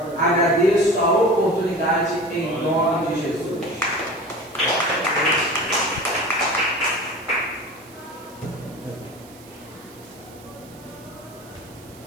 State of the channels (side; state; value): right; noise; hiss, 23 dB below the sound